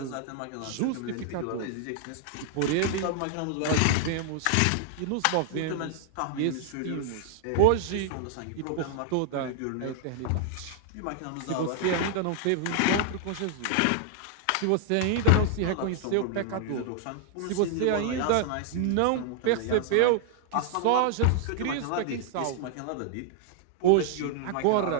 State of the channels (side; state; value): both; different; correlation 0.00